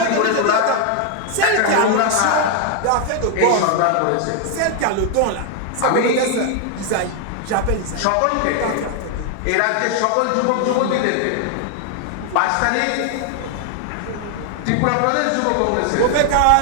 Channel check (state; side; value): different; both; correlation 0.00